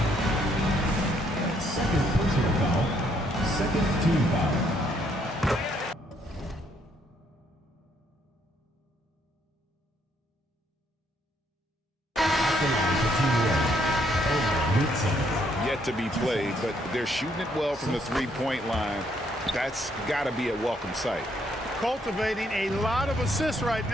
Second personal foul. Second team foul. Yet to be played, but they're shooting it well from the 3-point line. That's got to be a welcome sight. Cultivating a lot of assists right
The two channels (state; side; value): normal; both; correlation 0.70